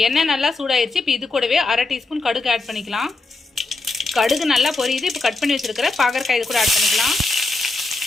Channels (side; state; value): right; quieter; 3.4 dB